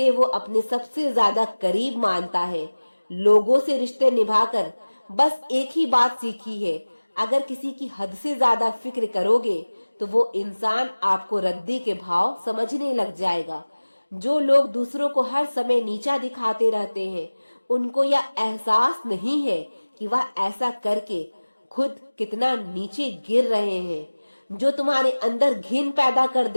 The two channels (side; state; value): both; inverted; correlation -1.00